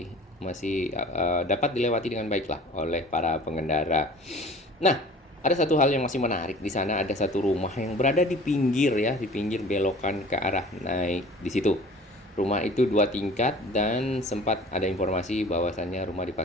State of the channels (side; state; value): both; normal; correlation 0.45